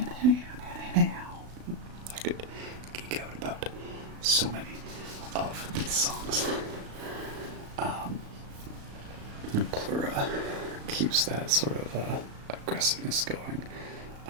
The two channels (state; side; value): late; left; 36 ms